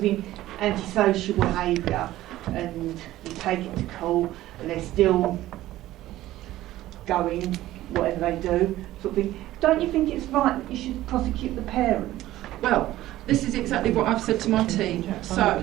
antisocial behaviour and you take it to court and they're still going, whatever they do, sort of thing, don't you think it's right that you should prosecute the parent? Well, this is exactly what I've said to my team.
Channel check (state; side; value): quieter; left; 15.2 dB